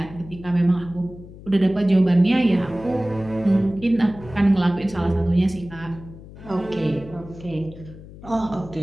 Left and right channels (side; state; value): left; noise; hum, 17 dB below the sound